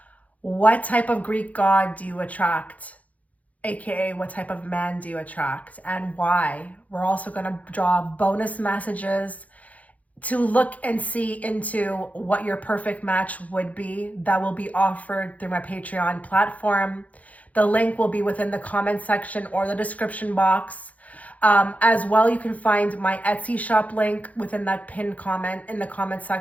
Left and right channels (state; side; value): late; right; 0.071 ms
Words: what type of Greek god do you attract, aka what type of man do you attract, and why. We're also going to draw bonus messages to look and see into what your perfect match would be. That will be offered through my Patreon platform. The link will be within the comment section or the description box. As well, you can find my Etsy shop link within that pinned comment in the comment